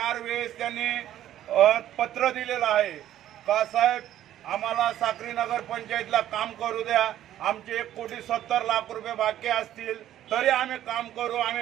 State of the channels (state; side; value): quieter; left; 12.3 dB